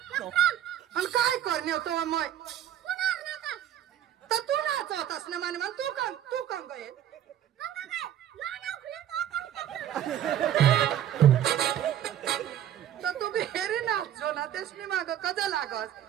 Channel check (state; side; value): quieter; left; 10.9 dB